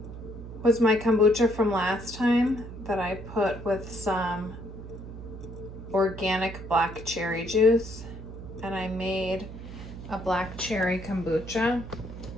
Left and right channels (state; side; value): noise; right; hum, 12 dB below the sound